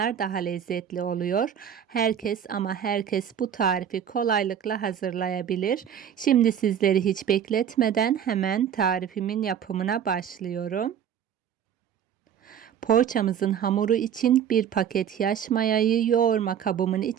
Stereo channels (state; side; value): quieter; left; 8.8 dB